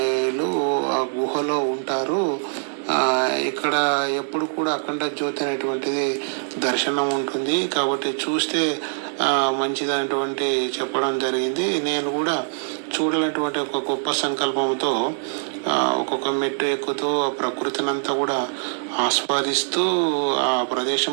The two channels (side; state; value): left; silent; 62 dB below the other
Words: ఆ గుహలో ఉంటారు. ఇక్కడ ఎప్పుడు కూడా అఖండ జ్యోతి అనేటువంటిది దర్శనం ఉంటుంది, కాబట్టి చూస్తే మంచిదనేటువంటి చెప్పడం జరిగింది. నేను కూడా చూడాలనేటువంటి ఒక గొప్ప సంకల్పంతో ఒక్కొక్క మెట్టు ఎక్కుతూ ఆ ప్రకృతిని అంతా కూడా ఆస్వాదిస్తూ ఆ